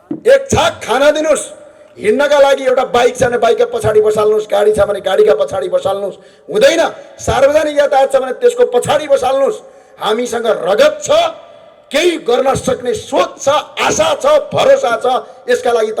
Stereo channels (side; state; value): both; identical; correlation 1.00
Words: 1 छाक खाना दिनुहोस्। हिँड्नका लागि एउटा बाइक छ भने बाइकका पछाडि बसाल्नुहोस्, गाडी छ भने गाडीका पछाडि बसाल्नुहोस्। हुँदैन, सार्वजनिक यातायात छ भने त्यसको पछाडि बसाल्नुहोस्। हामीसँग रगत छ, केही गर्न सक्ने सोच छ, आशा छ, भरोसा छ। यसका लागि